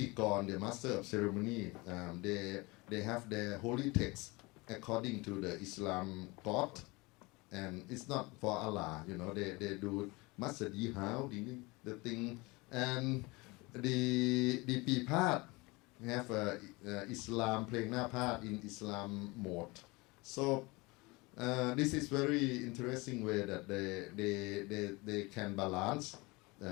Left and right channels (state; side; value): quieter; right; 24.6 dB